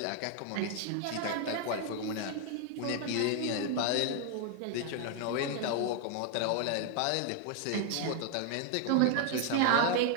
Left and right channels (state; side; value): different; both; correlation 0.00